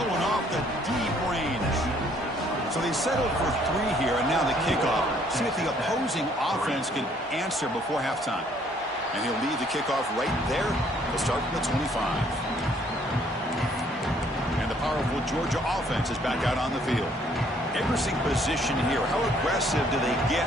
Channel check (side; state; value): both; normal; correlation 0.63